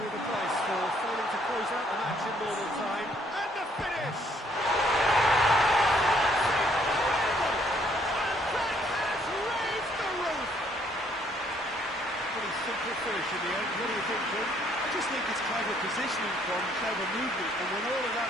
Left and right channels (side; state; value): both; normal; correlation 0.66